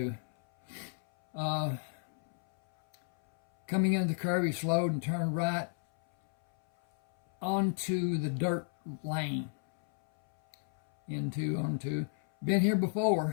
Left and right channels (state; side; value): silent; right; 56 dB below the other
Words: Coming into the curb, he slowed and turned right onto the dirt lane. Onto. Been here